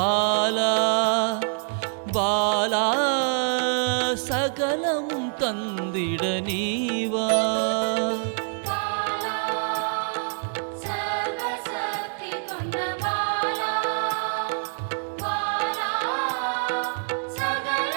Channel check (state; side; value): silent; left; digital silence